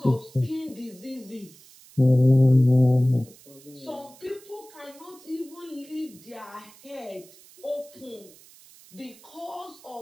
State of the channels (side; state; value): right; noise; hiss, 23 dB below the sound